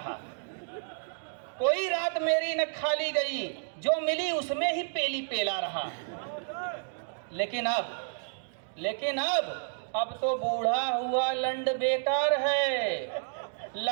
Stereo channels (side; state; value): left; silent; digital silence